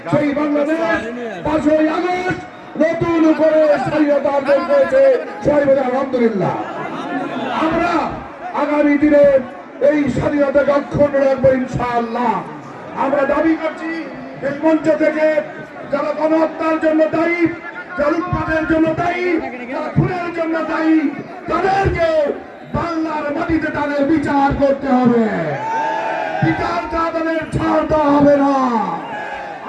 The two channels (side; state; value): both; identical; correlation 1.00